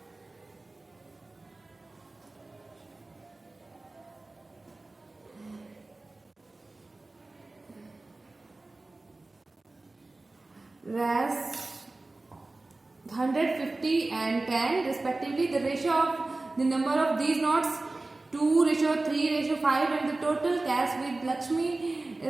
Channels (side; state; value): left; quieter; 3.1 dB